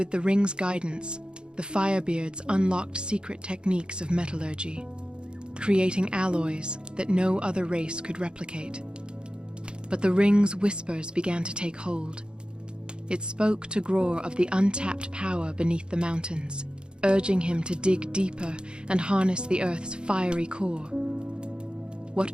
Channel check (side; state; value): left; late; 0.051 ms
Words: the ring's guidance, the Firebeards unlocked secret techniques of metallurgy, creating alloys that no other race could replicate. But the ring's whispers began to take hold. It spoke to Gror of the untapped power beneath the mountains, urging him to dig deeper and harness the Earth's fiery core.